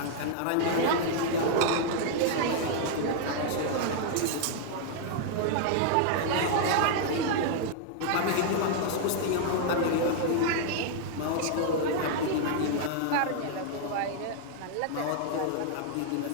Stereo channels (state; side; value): different; both; correlation 0.00